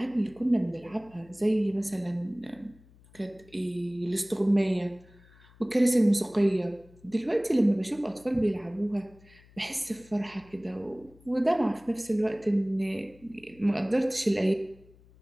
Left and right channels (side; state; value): left; noise; hum, 26 dB below the sound